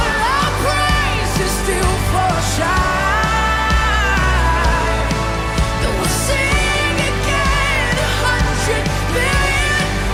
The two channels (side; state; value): both; identical; correlation 1.00